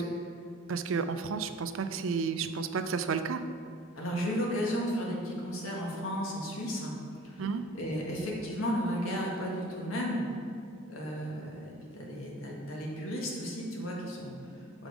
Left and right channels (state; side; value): normal; both; correlation 0.46